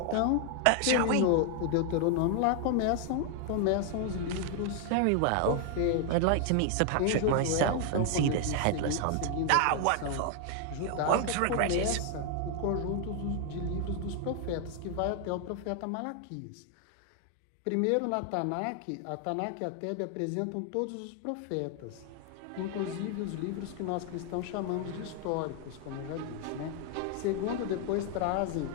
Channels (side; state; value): both; different; correlation 0.00